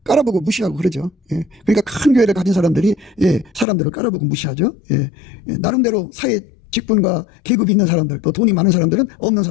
깔아보고 무시하고 그러죠. 그러니까 큰 교회를 가진 사람들이, 사람들을 깔아보고 무시하죠. 나름대로 사회 직분과 계급이 있는 사람들, 또 돈이 많은 사람들은 없는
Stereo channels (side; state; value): right; drops out; at 3.7 s